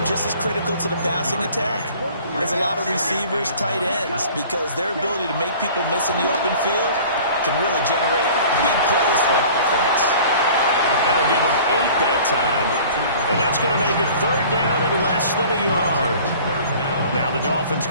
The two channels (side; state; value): both; inverted; correlation -0.47